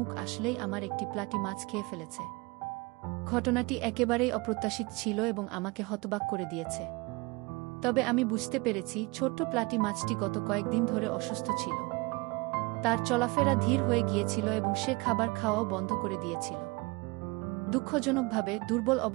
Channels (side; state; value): left; quieter; 25.7 dB